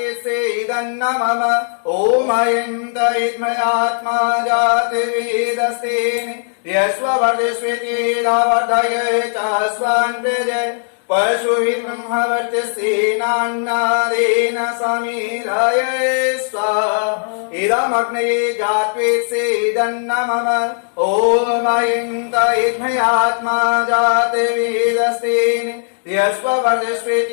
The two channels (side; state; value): right; silent; digital silence